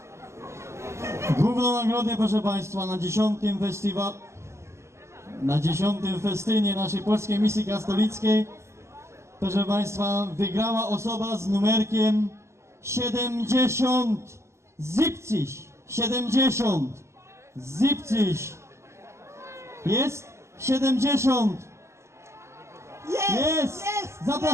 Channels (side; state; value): left; late; 0.13 ms